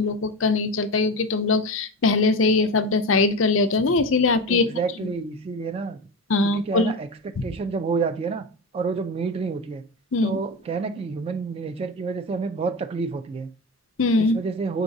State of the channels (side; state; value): both; normal; correlation 0.24